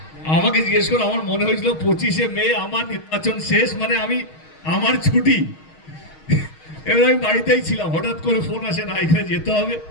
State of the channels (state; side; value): late; right; 6.4 ms